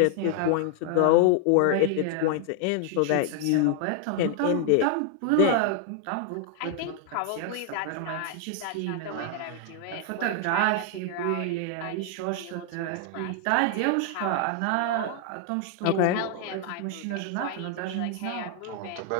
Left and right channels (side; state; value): both; different; correlation 0.00